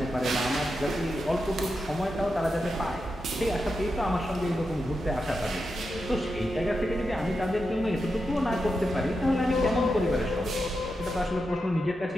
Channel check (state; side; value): normal; both; correlation 0.88